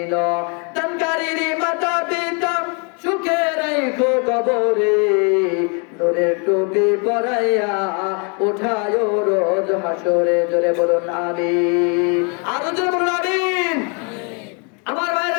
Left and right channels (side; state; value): right; quieter; 35.8 dB